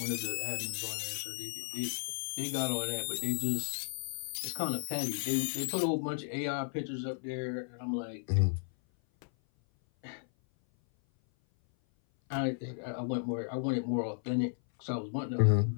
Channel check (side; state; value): right; silent; 55 dB below the other